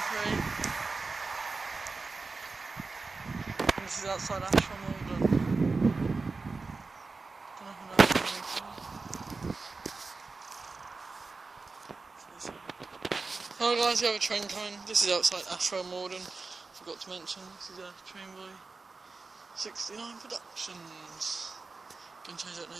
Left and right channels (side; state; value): left; quieter; 4.0 dB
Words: This is outside Ashwell Morden. Hello guys, we have a train coming. This is outside Ashwell Morden. Forgot to mention, this is a train by 69 Productions. Gonna change that